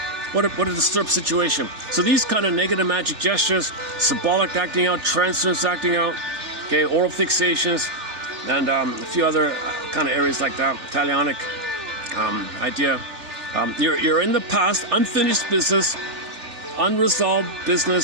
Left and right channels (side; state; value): left; late; 3.4 ms